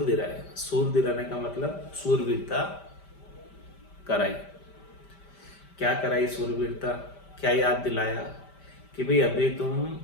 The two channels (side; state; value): right; late; 5.1 ms